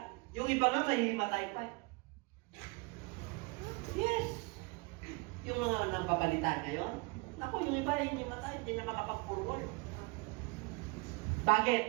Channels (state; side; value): quieter; left; 27.0 dB